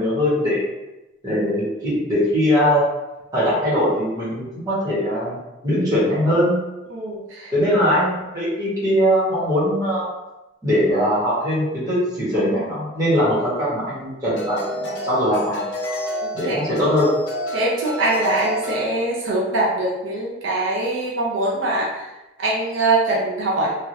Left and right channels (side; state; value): both; normal; correlation 0.34